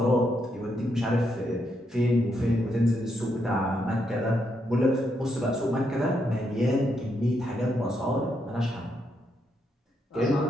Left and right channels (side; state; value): both; normal; correlation 0.79